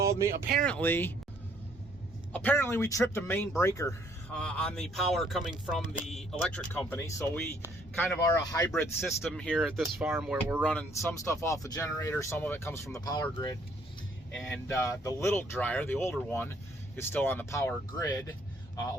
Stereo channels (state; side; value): normal; both; correlation 0.64